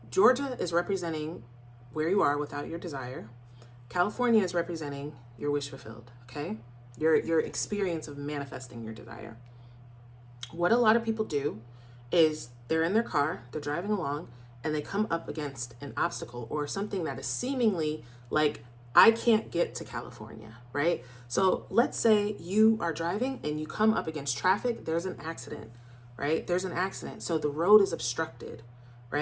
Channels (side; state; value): both; identical; correlation 1.00